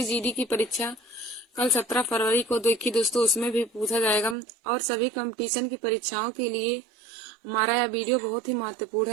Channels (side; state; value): left; drops out; at 4.4 s